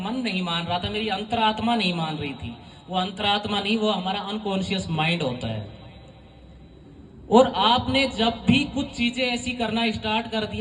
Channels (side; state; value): both; identical; correlation 1.00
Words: नहीं मान रहा था, मेरी अंतरात्मा नहीं मान रही थी। वो अंतरात्मा नहीं, वो हमारा अनकॉन्शियस माइंड होता है। और आपने जब भी कुछ चीजें ऐसी करना स्टार्ट कर